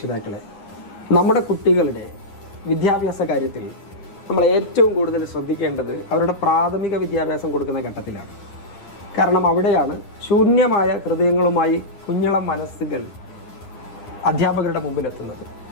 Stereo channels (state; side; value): late; right; 9.9 ms